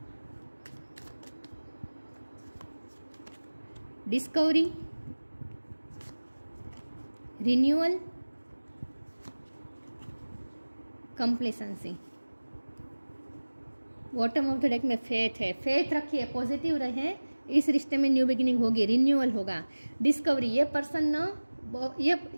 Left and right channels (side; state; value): both; inverted; correlation -1.00